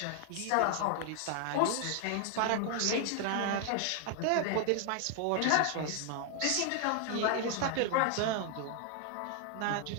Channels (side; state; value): both; different; correlation 0.00